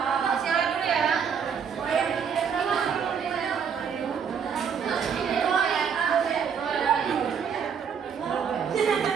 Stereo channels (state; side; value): quieter; left; 7.0 dB